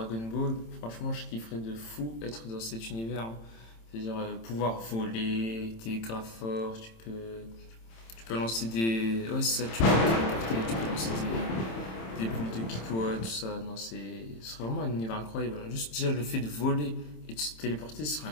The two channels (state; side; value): late; right; 27 ms